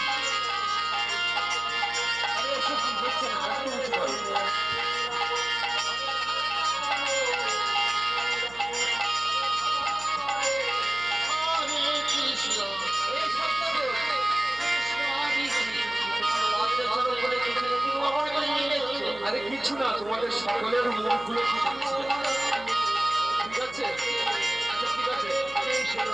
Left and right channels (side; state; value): right; noise; hum, 20 dB below the sound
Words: এসব কি হচ্ছে না, একটু উঁচু করো। এই সপ্তাহে তোমার লজ্জা শরম বলে কিছু নেই, তুমি অপর করে নিয়ে যাচ্ছো। আরে কিছু না, তোমাদের সকলের মুখগুলো ঠিক আছে? আচ্ছা ঠিক আছে,